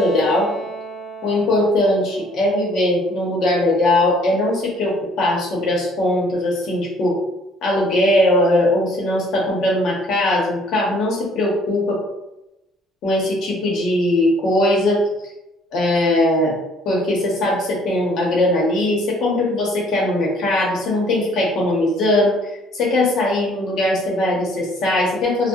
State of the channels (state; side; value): normal; both; correlation 0.59